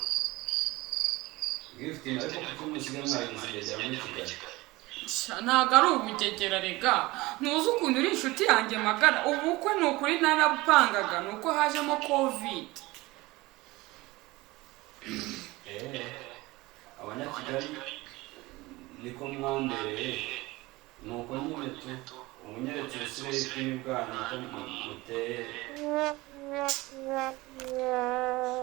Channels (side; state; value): left; quieter; 20.9 dB